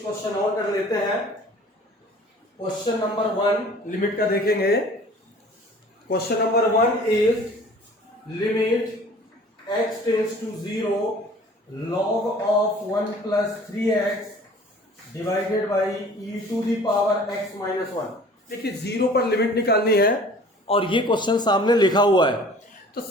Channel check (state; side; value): normal; both; correlation 0.48